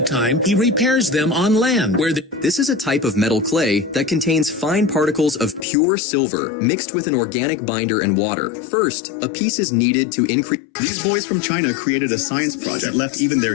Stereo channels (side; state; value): right; drops out; at 5.7 s